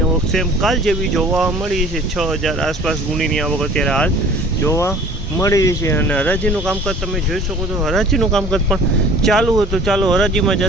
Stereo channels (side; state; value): both; normal; correlation 0.48